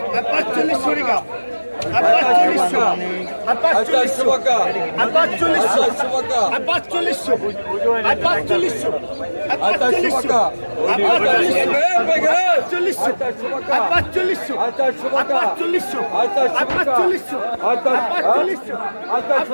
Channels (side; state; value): both; inverted; correlation -1.00